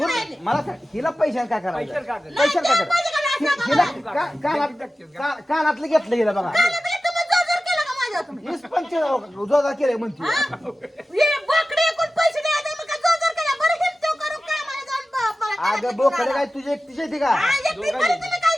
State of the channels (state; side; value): normal; both; correlation 0.95